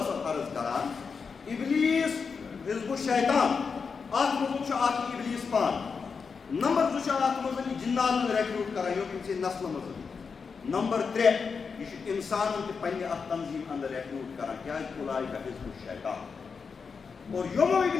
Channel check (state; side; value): quieter; right; 5.4 dB